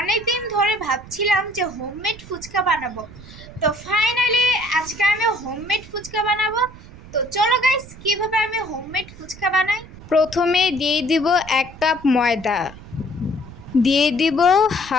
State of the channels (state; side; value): noise; right; rumble, 17 dB below the sound